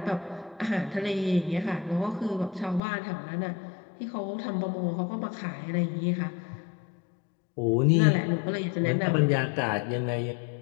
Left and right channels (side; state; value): right; drops out; at 2.8 s